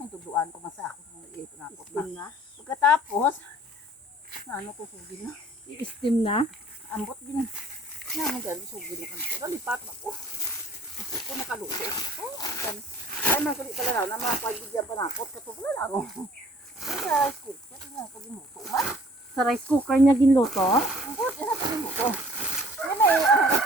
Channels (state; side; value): normal; both; correlation 0.53